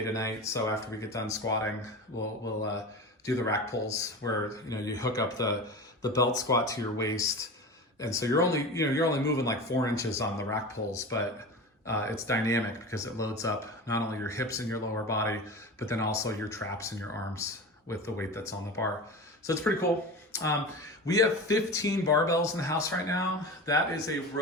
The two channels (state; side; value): normal; both; correlation 0.30